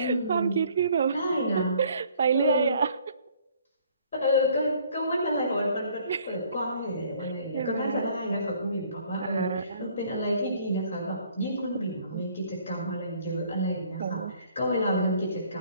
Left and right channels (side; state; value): both; inverted; correlation -0.59